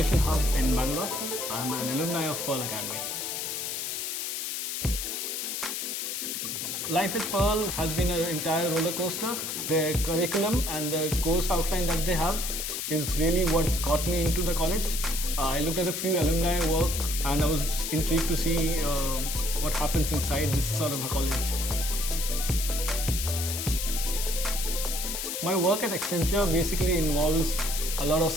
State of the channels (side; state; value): left; noise; hiss, 3 dB below the sound